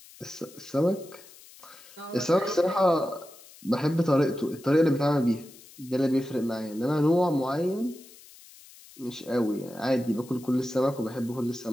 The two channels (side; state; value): left; noise; hiss, 22 dB below the sound